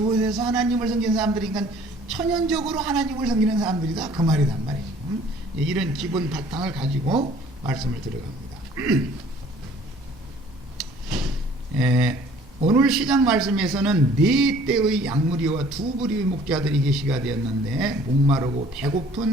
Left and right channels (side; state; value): both; normal; correlation 0.54